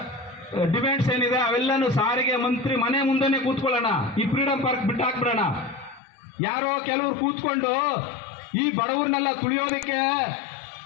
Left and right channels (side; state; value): right; drops out; at 6.0 s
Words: ಡಿಮ್ಯಾಂಡ್ಸ್ ಏನಿದೆ ಅವೆಲ್ಲನೂ ಸಾರಿಗೆ ಮಂತ್ರಿ ಮನೆ ಮುಂದೆನೆ ಕೂತ್ಕೊಳ್ಳೋಣ, ಈ ಫ್ರೀಡಂ ಪಾರ್ಕ್ ಬಿಟ್ಟು ಹಾಕ್ಬಿಡೋಣ. ಯಾರೋ ಕೆಲವರು ಕೂತ್ಕೊಂಡು ಈ ಬಡವರನ್ನೆಲ್ಲ ತುಳಿಯೋದಕ್ಕೆ